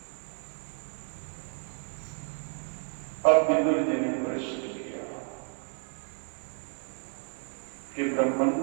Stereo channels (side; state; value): left; silent; 57 dB below the other